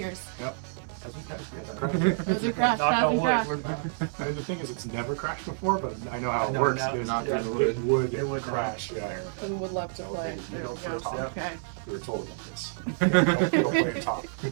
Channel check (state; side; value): silent; left; digital silence